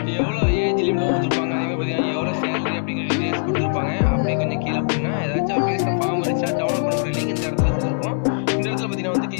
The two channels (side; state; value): right; silent; digital silence